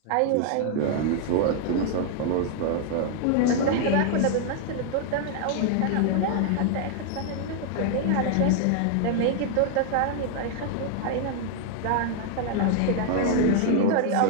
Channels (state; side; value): different; both; correlation 0.00